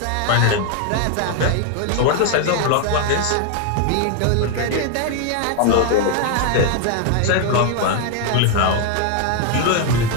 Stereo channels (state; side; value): different; both; correlation 0.01